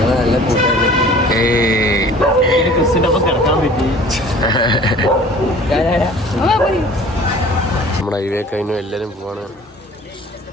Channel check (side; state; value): both; normal; correlation 0.47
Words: നല്ല കൂട്ടുകാരും. ക്രിസ്റ്റിൻ്റെ ഒപ്പം കിടക്കാൻ പറ്റി. നമ്മുടെ ഹൈവേ കഴിഞ്ഞു, എല്ലാരും പോവാണ്.